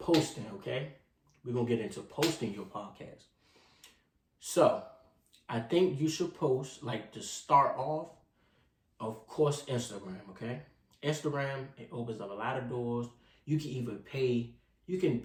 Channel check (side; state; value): both; identical; correlation 1.00